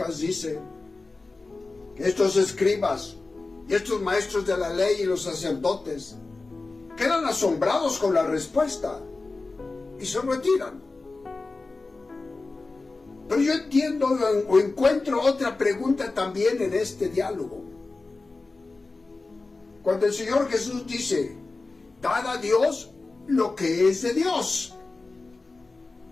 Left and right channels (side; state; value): right; quieter; 3.6 dB